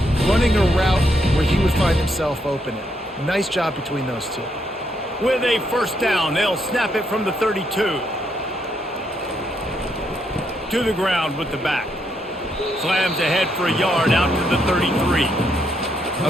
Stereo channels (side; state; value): both; normal; correlation 0.77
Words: running a route where he would find himself open. Nice job between those two. With a first down, they'll snap it from the 32. To the ground with the back. Slams ahead for a yard out to the 33.